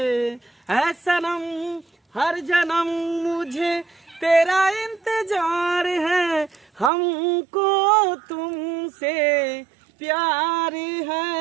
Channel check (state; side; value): drops out; left; at 6.9 s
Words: है सनम हर जन्म मुझे तेरा इंतजार है, हमको तुमसे प्यार